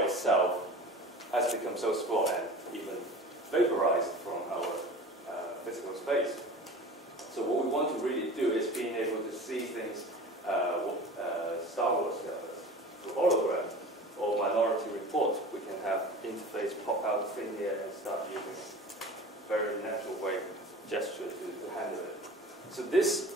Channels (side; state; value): both; normal; correlation 0.38